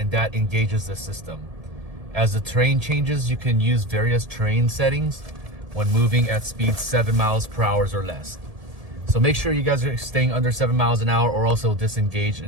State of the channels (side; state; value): left; late; 1.7 ms